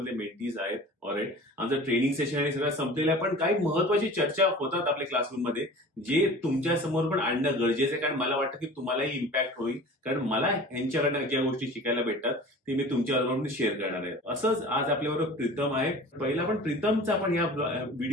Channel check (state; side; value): normal; both; correlation 0.41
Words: मेंटीज आहेत. ऑलराईट, आमचं ट्रेनिंग सेशन आणि सगळं संपलेलं आहे, पण काही महत्वाची चर्चा होतात आपल्या क्लासरूम मध्ये, जे तुमच्या समोर पण आणणं गरजेचं आहे. कारण मला वाटतं की तुम्हालाही इम्पॅक्ट होईल, कारण मला यांच्याकडनं ज्या गोष्टी शिकायला भेटतात ते मी तुमच्याबरोबर शेअर करणार आहे. असंच आज आपल्याबरोबर प्रीतम आहे. पहिला पण प्रीतमचा आपण या